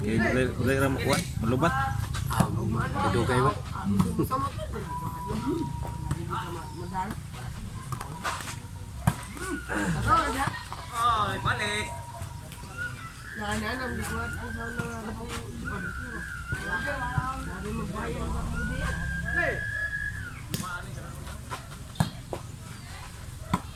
kay dili ra mo kuan, malubat. Ito kayo. Ay, balik. Nananam, di ko at ang sana nga po. Sabi mo bayang ba mo diyan?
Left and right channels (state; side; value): identical; both; correlation 1.00